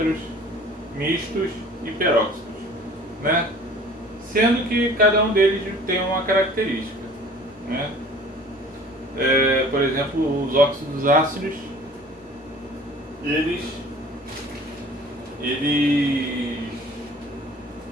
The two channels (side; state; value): both; normal; correlation 0.48